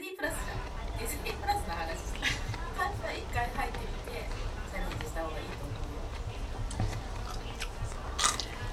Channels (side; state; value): both; identical; correlation 1.00